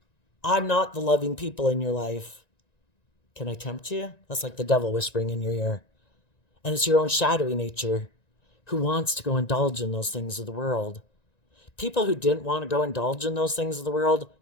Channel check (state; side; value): late; right; 1.9 ms